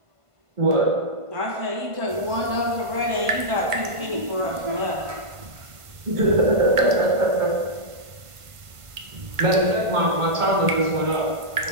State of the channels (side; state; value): left; late; 1.5 ms